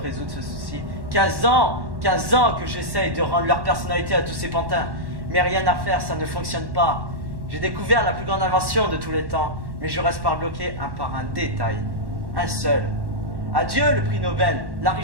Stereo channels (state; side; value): late; left; 1.1 ms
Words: ce souci. 15 ans que j'essaye de rendre leur personnalité à tous ces pantins. Mais rien à faire, ça ne fonctionne pas. J'ai découvert la plus grande invention de tous les temps, mais je reste bloqué par un détail. Un seul. Adieu le prix Nobel, la